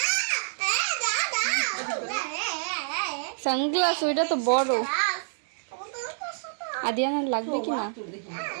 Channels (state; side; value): silent; left; digital silence